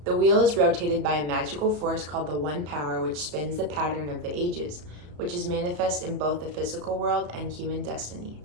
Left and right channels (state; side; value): late; left; 34 ms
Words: The wheel is rotated by a magical force called the One Power, which spins the pattern of the ages, which is manifest in both the physical world and human destiny.